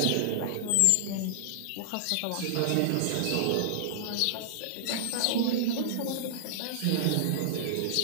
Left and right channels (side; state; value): both; different; correlation -0.01